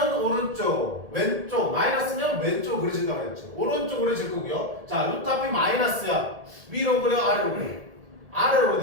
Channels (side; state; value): left; late; 1.7 ms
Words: 오른쪽, 왼쪽, 마이너스면 왼쪽 그려진다고 했죠. 오른쪽 그려질 거고요. 자, 루트 앞이 마이너스야. 위로 그려, 아래로 그려. 아래로